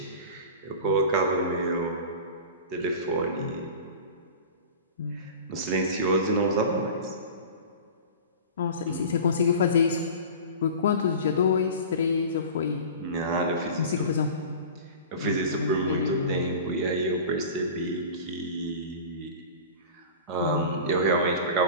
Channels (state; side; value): inverted; both; correlation -0.35